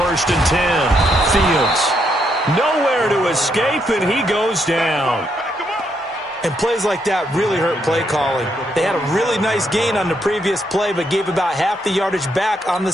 and 10, Fields. Nowhere to escape, and he goes down. And plays like that really hurt play calling. They had a really nice gain on the previous play, but gave about half the yardage back on the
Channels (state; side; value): normal; both; correlation 0.77